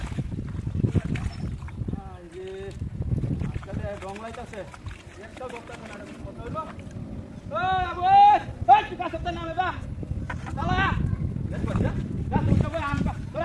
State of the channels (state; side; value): identical; both; correlation 1.00